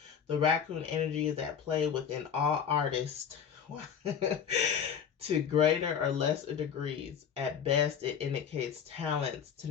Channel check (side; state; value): right; quieter; 7.6 dB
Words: The raccoon energy is at play within all artists to greater or lesser degrees. At best, it indicates talents,